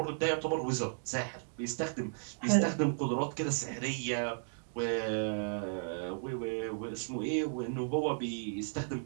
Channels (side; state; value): left; silent; digital silence